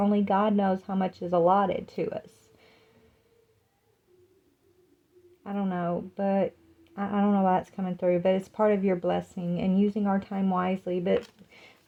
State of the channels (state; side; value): identical; both; correlation 1.00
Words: God knows how much is allotted to us. I don't know, but I don't know why that's coming through, but it's part of your blessing and using our time wisely. But